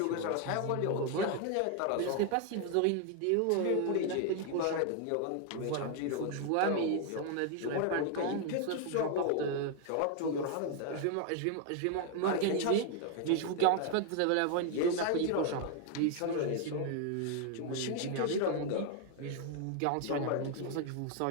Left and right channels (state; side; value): different; both; correlation 0.00